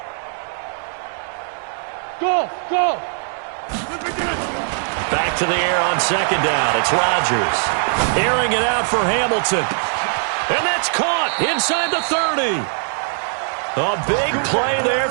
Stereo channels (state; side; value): silent; left; 66 dB below the other